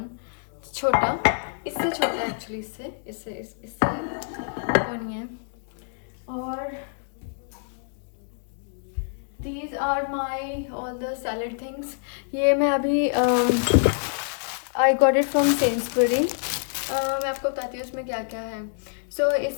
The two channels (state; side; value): silent; right; 61 dB below the other